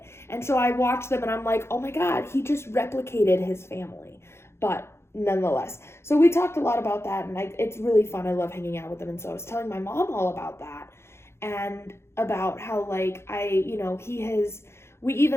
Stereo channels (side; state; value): right; late; 0.12 ms